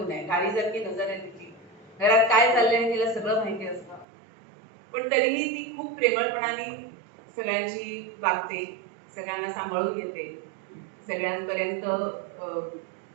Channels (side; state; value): left; drops out; at 4.0 s